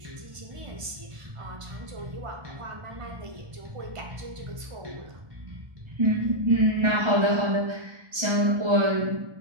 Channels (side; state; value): left; late; 1.5 ms